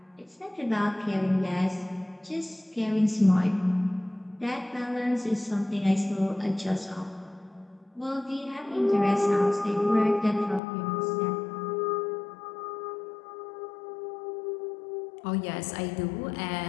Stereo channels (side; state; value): right; drops out; at 10.6 s